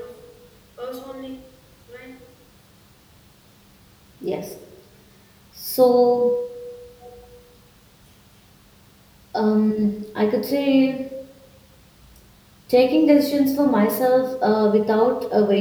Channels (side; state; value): both; identical; correlation 1.00